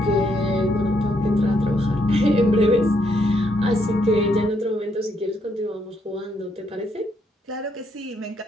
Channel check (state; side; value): normal; both; correlation 0.74